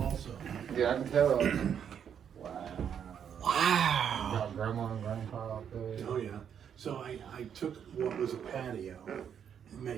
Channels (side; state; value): left; quieter; 8.3 dB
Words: also. Yeah, I can tell. Wow. Wow. Got grandma and grandpa up there. Oh, yeah. So I took what was a patio and